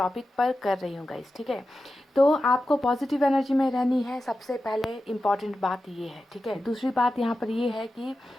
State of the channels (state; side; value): normal; both; correlation 0.92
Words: पर कर रही हूँ गाइस, ठीक है। तो आपको पॉजिटिव एनर्जी में रहनी है, सबसे पहले इम्पॉर्टेंट बात ये है, ठीक है। दूसरी बात यहाँ पर ये है कि